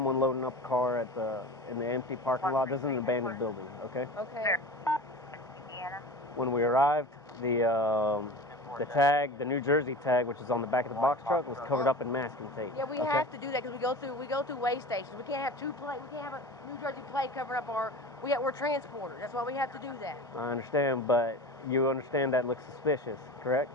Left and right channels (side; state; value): both; normal; correlation 0.34